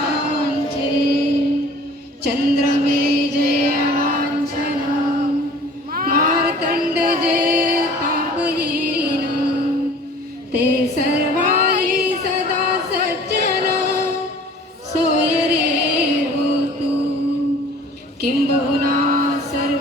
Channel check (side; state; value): both; normal; correlation 0.48